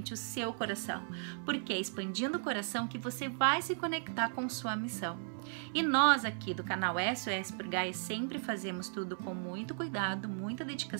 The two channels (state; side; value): silent; left; 54 dB below the other